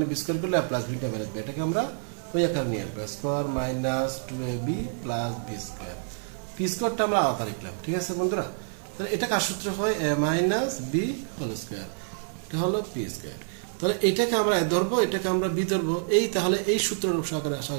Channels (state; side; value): silent; left; digital silence